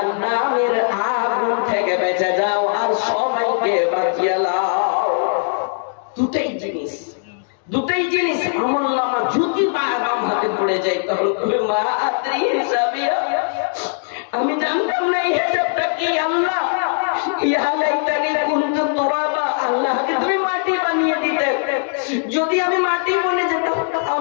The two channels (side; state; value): right; silent; digital silence